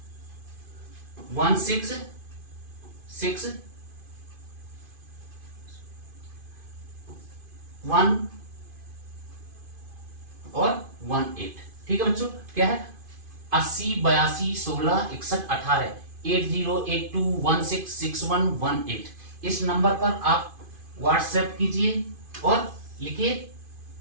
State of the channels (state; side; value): late; left; 2.5 ms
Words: और 18, ठीक है बच्चों। क्या है, 80 82 16 61 18, 8082166118। इस नंबर पर आप व्हाट्सएप कीजिए और लिखिए